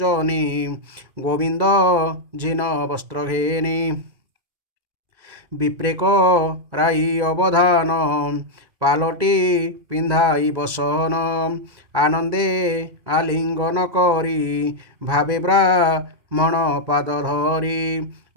গোবিন্দ ঝিন বস্ত্র ঘেনি বিপ্রেক রাই অবধান পালটি পিন্ধাই বসন আনন্দে আলিঙ্গন করি ভাবে ব্রাহ্মণ পাদ ধরি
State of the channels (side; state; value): left; late; 2.5 ms